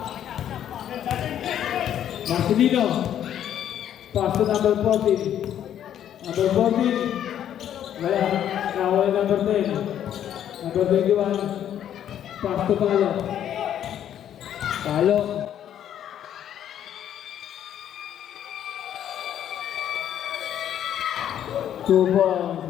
Marcelino. Pass to number 14. Number 14. Wala. Nawala number 10. Number 21. Pass to Palo. Palo. Two balls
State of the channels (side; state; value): right; quieter; 10.4 dB